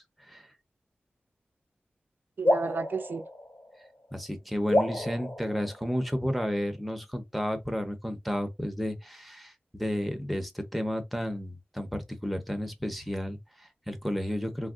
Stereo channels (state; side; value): normal; both; correlation 0.94